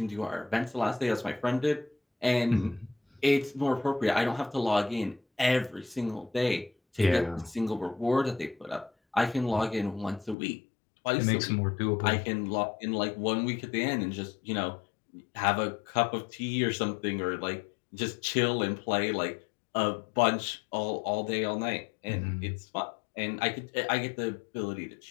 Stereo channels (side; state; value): right; drops out; at 10.4 s